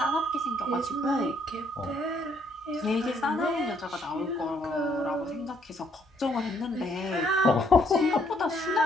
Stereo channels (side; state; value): both; normal; correlation 0.68